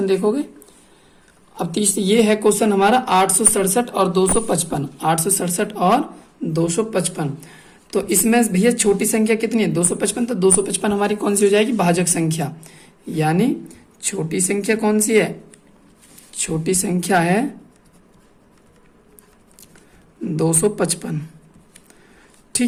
देखोगे। अब तीसरा ये है क्वेश्चन हमारा 867 और 255, 867 और 255। तो इसमें भैया छोटी संख्या कितनी है, 255, तो 255 हमारी कौन सी हो जाएगी, भाजक संख्या, यानी छोटी संख्या कौन सी है, छोटी संख्या है 255।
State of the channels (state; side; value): identical; both; correlation 1.00